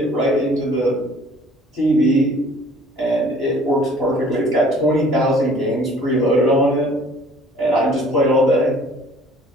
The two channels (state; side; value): normal; both; correlation 0.53